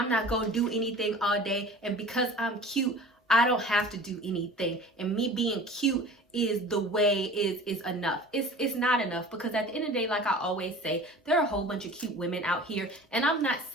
not gonna do anything all day. And because I'm cute, I don't have to do anything. And me being cute is the way is enough. It's not enough, because at the end of the day, like I always say, there are a whole bunch of cute women out here. And I'm not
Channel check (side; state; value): both; normal; correlation 0.42